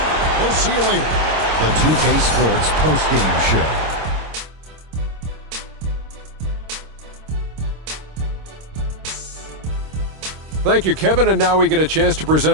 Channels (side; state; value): left; late; 26 ms